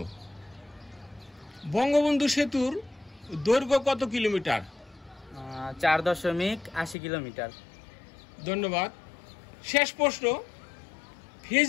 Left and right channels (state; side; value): drops out; right; at 7.0 s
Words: বঙ্গবন্ধু সেতুর দৈর্ঘ্য কত কিলোমিটার? 4.80 কিলোমিটার। ধন্যবাদ। শেষ প্রশ্ন,